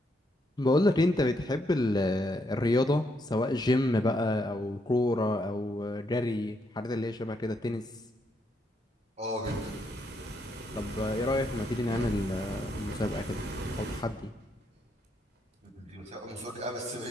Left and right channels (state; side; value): normal; both; correlation 0.76